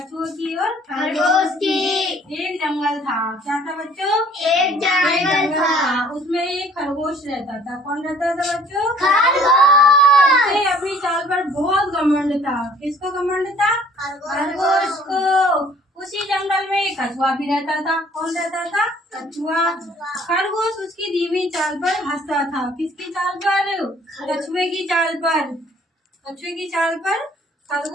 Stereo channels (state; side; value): normal; both; correlation 0.55